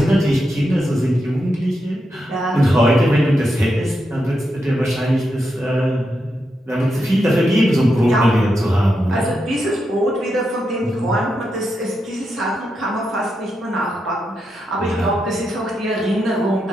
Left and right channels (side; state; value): both; normal; correlation 0.85